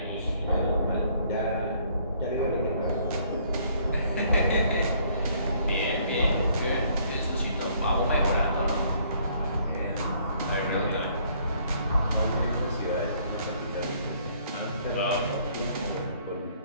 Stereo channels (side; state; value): both; inverted; correlation -0.63